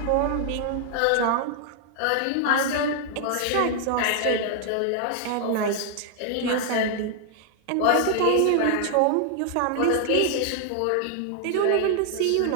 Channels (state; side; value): different; both; correlation 0.00